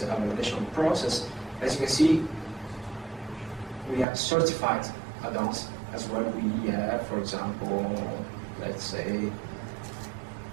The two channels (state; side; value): drops out; left; at 4.0 s